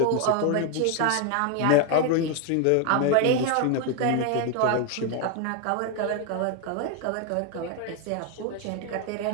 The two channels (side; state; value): both; different; correlation 0.01